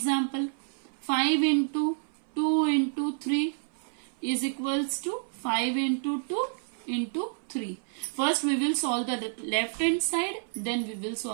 5 into 2 into 3 is equals to 5 into 2 into 3. First we will solve the left hand side, then we will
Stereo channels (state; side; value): silent; left; 58 dB below the other